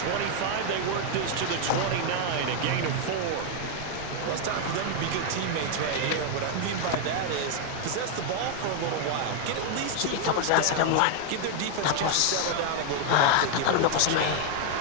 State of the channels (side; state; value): both; different; correlation 0.00